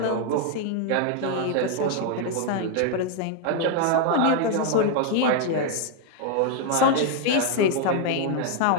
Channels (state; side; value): different; both; correlation 0.01